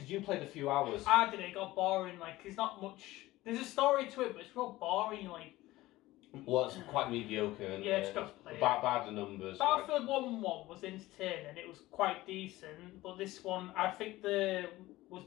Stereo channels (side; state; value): right; quieter; 17.7 dB